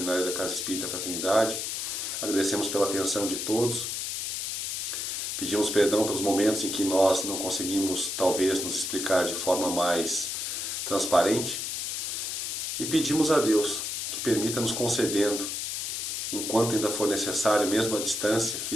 da Casa Espírita Fraternidade. Agradecemos pela atenção de todos. Pedimos perdão pelos momentos em que nós não conseguimos, talvez, nos explicar de forma mais transparente. E pedimos a Deus que permita nos concedendo, enquanto ainda for necessário, mesmo à distância,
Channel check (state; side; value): noise; left; hiss, 3 dB below the sound